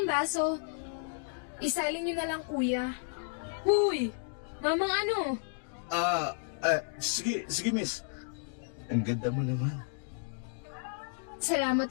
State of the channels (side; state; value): right; silent; digital silence